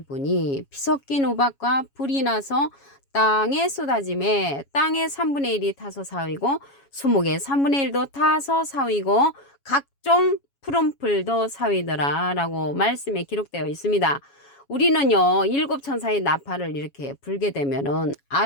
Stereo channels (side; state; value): right; late; 7.2 ms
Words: 부니 피 섞인 우박과 불이 나서 땅에 쏟아짐에 땅의 3분의 1이 타서 사위고 수목의 3분의 1도 타서 사위고 각종 푸른 풀도 사위더라 라고 말씀에 기록되어 있습니다. 우리는요, 일곱 천사의 나팔을 이렇게 불게 되면은